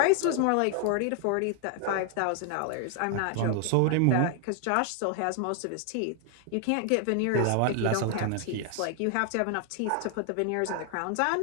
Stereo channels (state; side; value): different; both; correlation 0.00